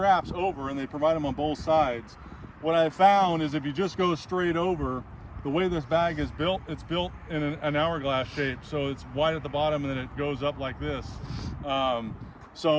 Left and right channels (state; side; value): identical; both; correlation 1.00